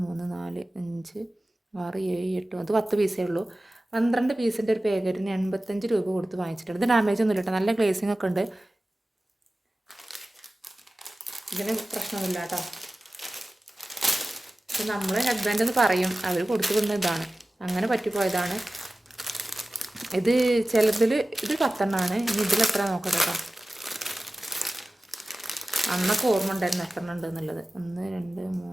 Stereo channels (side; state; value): both; normal; correlation 0.96